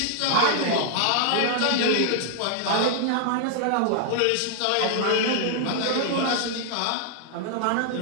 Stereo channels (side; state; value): both; different; correlation -0.01